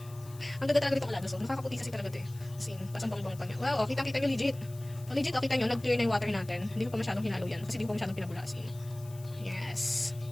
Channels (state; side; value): noise; left; hiss, 21 dB below the sound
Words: Ang ganda talaga ditong Alada soap. Nakakaputi kasi talaga ito eh. As in, pasang bang-bang pa niya. Wow, kita nyo legit. Legit, kita nyo, nag-clear na yung water natin. Hindi ko pa masyadong hinalo yan. Kasi hindi ko pa masyadong pinabulasin. Yes.